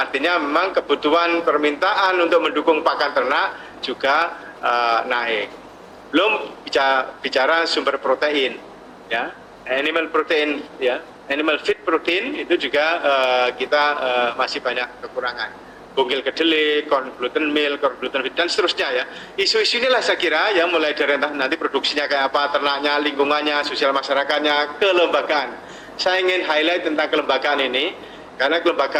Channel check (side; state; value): both; identical; correlation 1.00